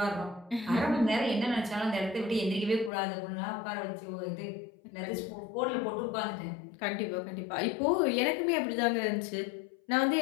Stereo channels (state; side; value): drops out; right; at 2.9 s